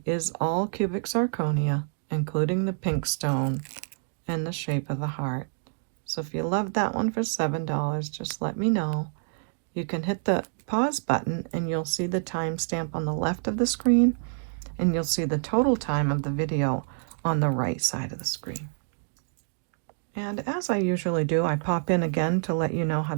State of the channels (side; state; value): left; silent; digital silence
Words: is all cubic zirconia, including the pink stone and the shape of the heart. So if you love that one for $7, just let me know. You can hit the pause button and you'll see the timestamp on the left of the screen, and you'll see the total time of the video on the right side of the screen. And as I usually do, I pop in again to let you know how